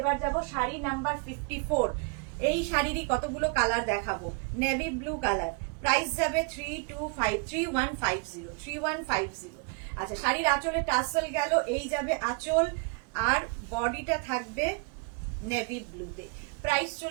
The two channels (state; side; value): quieter; left; 33.9 dB